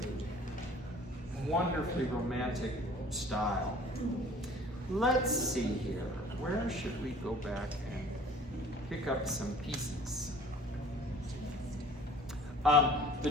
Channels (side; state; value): both; normal; correlation 0.49